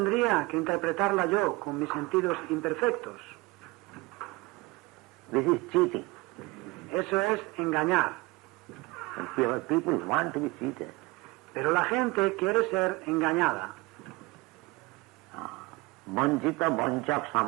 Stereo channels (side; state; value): left; quieter; 22.9 dB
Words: que interpretarla yo con mis sentidos imperfectos? This is cheating. Eso es engañar. And people want to be cheated. Pero la gente quiere ser engañada. Vanchita vanchak